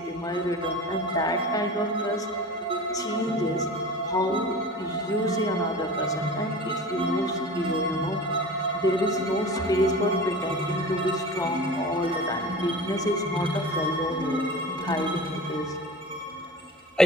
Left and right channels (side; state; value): both; normal; correlation 0.36